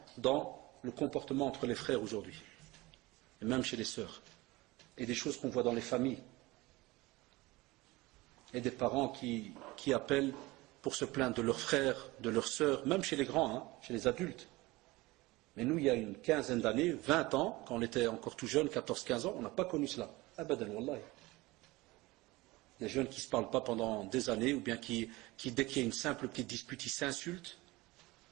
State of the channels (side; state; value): left; quieter; 21.0 dB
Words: dans le comportement entre les frères aujourd'hui. Et même chez les sœurs. Et des choses qu'on voit dans les familles. Et des parents qui appellent pour se plaindre de leurs frères, de leurs sœurs, même chez les grands, hein, chez les adultes. Mais nous, il y a une quinzaine d'années, 20 ans, quand on était encore tout jeune, 14-15 ans, on n'a pas connu cela. Abadan, wallahi. Des jeunes qui ne se parlent pas pendant des années, ou bien qui dès qu'il y a une simple petite dispute, ils s'insultent.